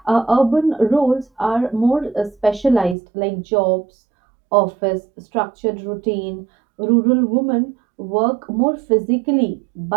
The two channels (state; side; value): drops out; left; at 3.0 s